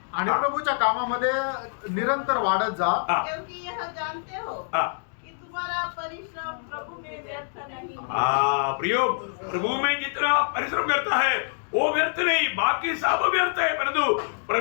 आणि हा. प्रभूच्या कामामध्ये निरंतर वाढत जा. हाँ, क्योंकि यह जानते हो हाँ, कि तुम्हारा परिश्रम प्रभु में व्यर्थ नहीं. हाँ, प्रियो, प्रभु में जितना परिश्रम करता है वो व्यर्थ नहीं, बाकी सब व्यर्थ है, परंतु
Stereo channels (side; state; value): right; silent; digital silence